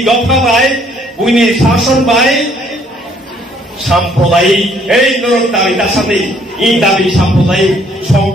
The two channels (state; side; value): normal; both; correlation 0.63